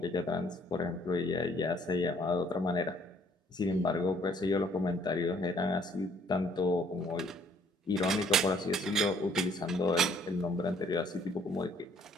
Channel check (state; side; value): normal; both; correlation 0.62